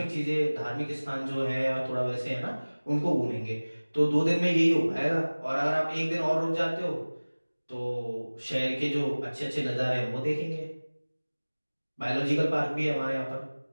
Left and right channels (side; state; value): both; inverted; correlation -1.00